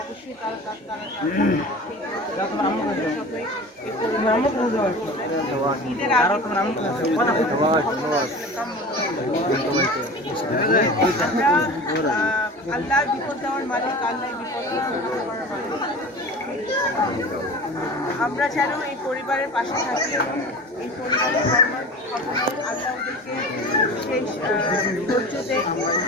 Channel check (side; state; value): both; normal; correlation 0.36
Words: অবশ্যই তারা ঈদের আল্লাহর বিপদ দেওয়ার মালিক, আল্লাহ বিপদ দেওয়ার মালিক। আমরা যেন এই পরিবারের পাশে থাকি, এই পরিবারের আল্লাহ ওদেরকে সেই ধৈর্য দেখ,